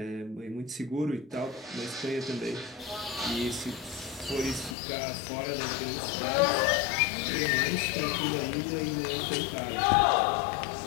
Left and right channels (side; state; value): right; drops out; at 4.8 s